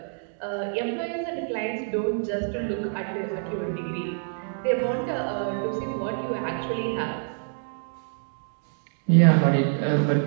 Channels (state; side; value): silent; left; digital silence